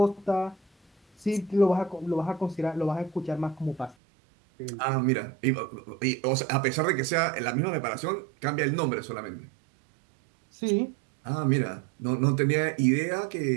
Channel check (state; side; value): drops out; left; at 4.0 s